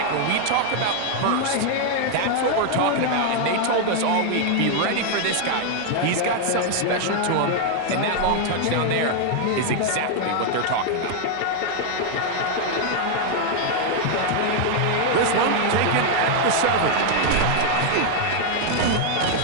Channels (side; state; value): both; different; correlation 0.00